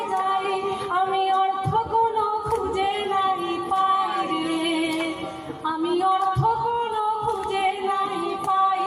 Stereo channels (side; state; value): both; identical; correlation 1.00